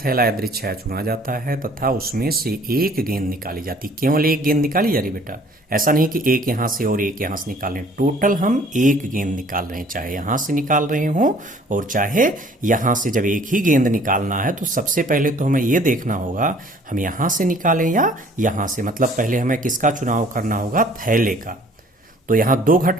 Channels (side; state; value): both; normal; correlation 0.55